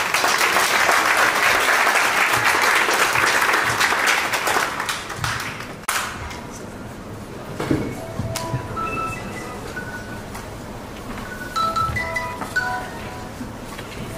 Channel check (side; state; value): both; identical; correlation 1.00